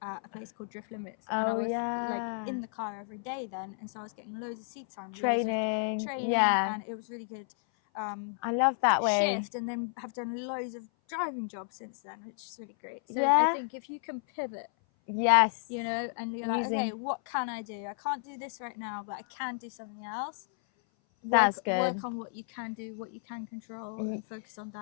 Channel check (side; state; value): right; silent; 56 dB below the other